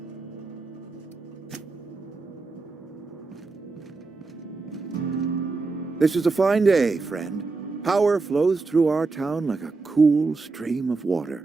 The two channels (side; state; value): left; quieter; 3.9 dB